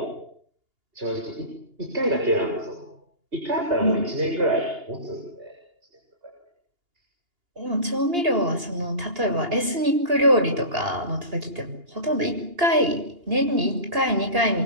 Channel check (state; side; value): late; left; 2.8 ms